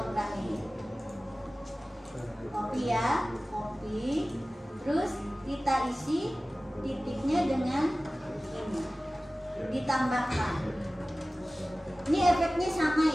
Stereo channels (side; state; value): both; normal; correlation 0.97